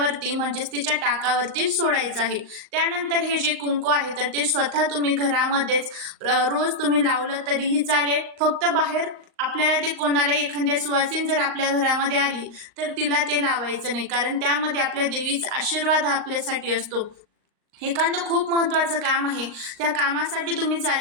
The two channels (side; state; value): left; late; 38 ms